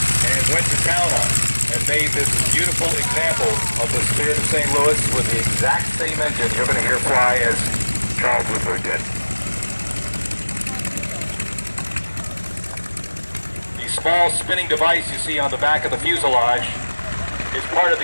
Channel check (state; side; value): inverted; both; correlation -1.00